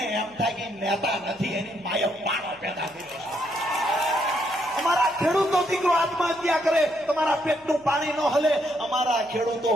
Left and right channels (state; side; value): noise; left; hum, 28 dB below the sound